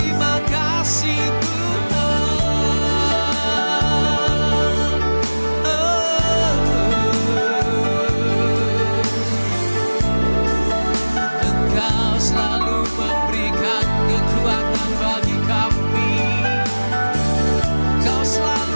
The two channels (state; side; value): inverted; both; correlation -1.00